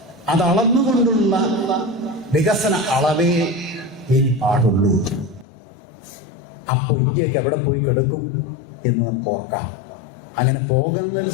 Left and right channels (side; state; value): right; drops out; at 5.5 s